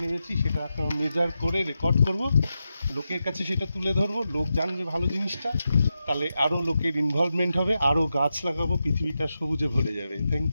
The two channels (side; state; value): both; inverted; correlation -0.89